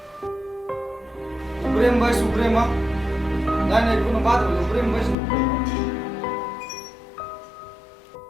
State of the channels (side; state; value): right; drops out; at 5.2 s